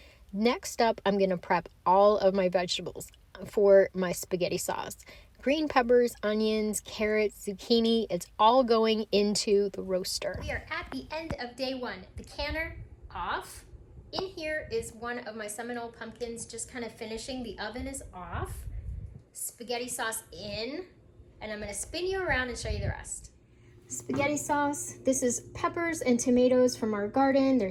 Next up, I'm gonna prep all of my vegetables for my spaghetti sauce. Green peppers, onions, carrots, zucchini, it's all going into the roaster. We are at the end of day one. The canner off. In here is one of my Seminole pumpkins just kind of finishing. The oven is off. Spaghetti sauce in, and I'm gonna spin you around and show you the rest. Spaghetti sauce. This is peppers and tomatoes from our garden.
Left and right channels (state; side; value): identical; both; correlation 1.00